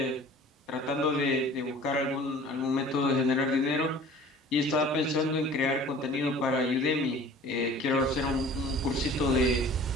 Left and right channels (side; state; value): both; normal; correlation 0.46